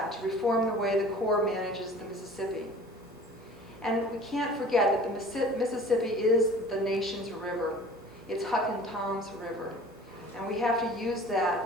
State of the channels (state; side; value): normal; both; correlation 0.45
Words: to reform the way the Corps manages the Mississippi. And we can't forget that the Mississippi is the nation's river. It's Huck and Tom's river. And we have to use